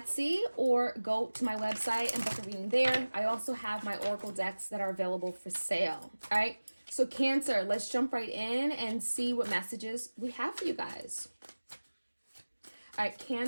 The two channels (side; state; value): both; inverted; correlation -1.00